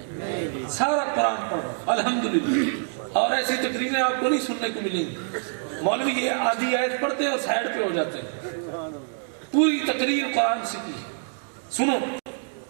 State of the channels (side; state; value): left; silent; 61 dB below the other